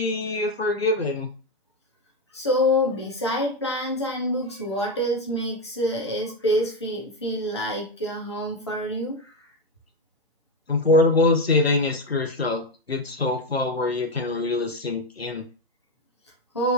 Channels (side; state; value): both; normal; correlation 0.10